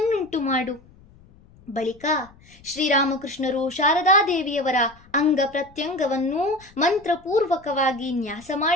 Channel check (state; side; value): noise; left; rumble, 26 dB below the sound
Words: ಮಾಡು. ಬಳಿಕ ಶ್ರೀರಾಮಕೃಷ್ಣರು ಶಾರದಾದೇವಿಯವರ ಅಂಗ ಪ್ರತ್ಯಂಗವನ್ನು ಮಂತ್ರಪೂರ್ವಕವಾಗಿ ನ್ಯಾಸ